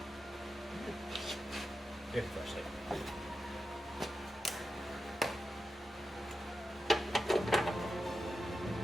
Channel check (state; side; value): normal; both; correlation 0.90